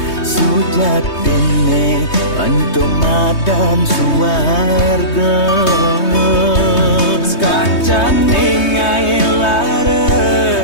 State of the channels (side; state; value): right; late; 3.2 ms